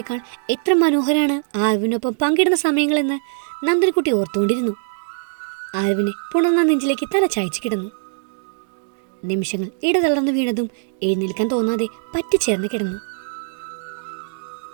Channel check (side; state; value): left; silent; digital silence